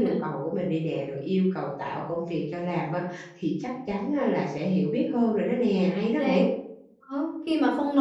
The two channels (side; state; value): both; identical; correlation 1.00